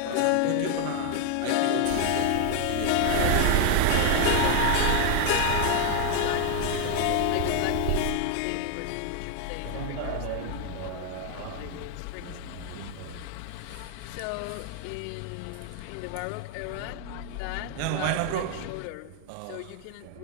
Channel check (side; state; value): both; different; correlation 0.00